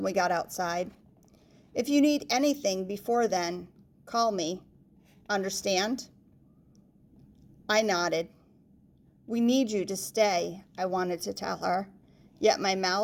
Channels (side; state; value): both; identical; correlation 1.00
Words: we got outside. If you need anything before then, call me. Understand? I nodded. We need you to stay, I wanted to tell her, yet my